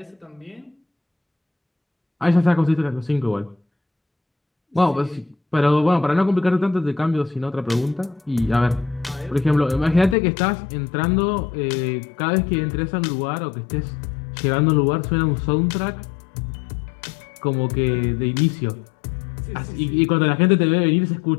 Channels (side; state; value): right; drops out; at 10.2 s